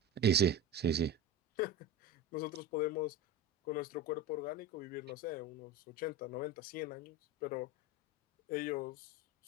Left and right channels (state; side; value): normal; both; correlation 0.27